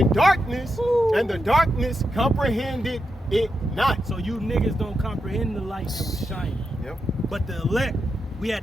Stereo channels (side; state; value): both; normal; correlation 0.86